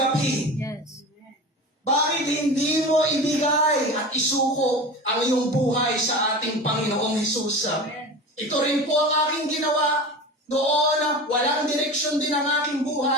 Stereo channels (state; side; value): normal; both; correlation 0.31